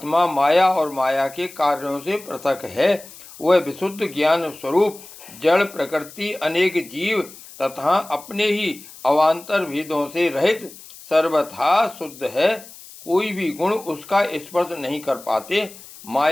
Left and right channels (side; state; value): left; noise; hiss, 18 dB below the sound